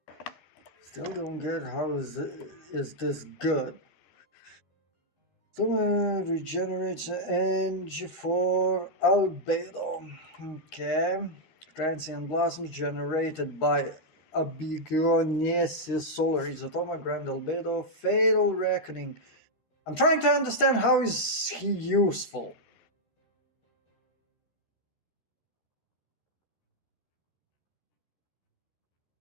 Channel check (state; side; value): late; right; 13 ms